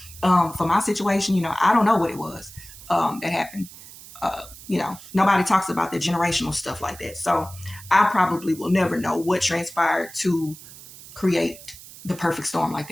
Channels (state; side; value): noise; right; hiss, 17 dB below the sound